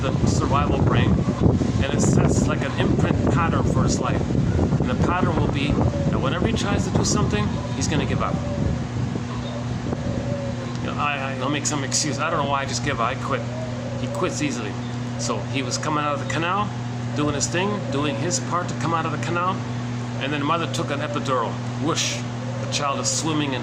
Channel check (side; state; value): both; identical; correlation 1.00